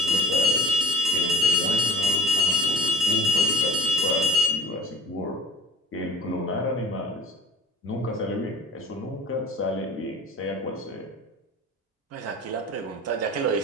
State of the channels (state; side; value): normal; both; correlation 0.45